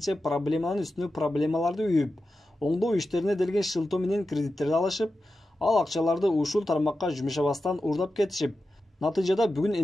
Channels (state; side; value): normal; both; correlation 0.92